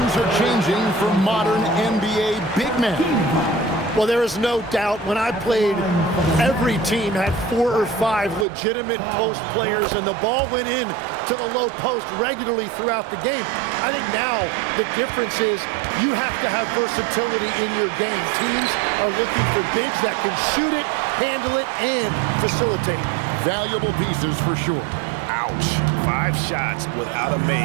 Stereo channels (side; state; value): left; drops out; at 8.5 s